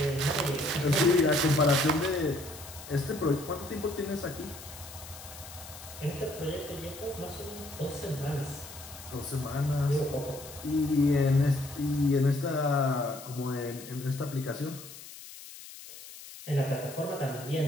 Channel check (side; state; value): left; noise; hiss, 15 dB below the sound